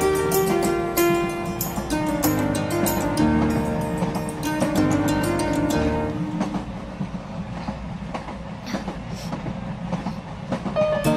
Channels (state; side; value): identical; both; correlation 1.00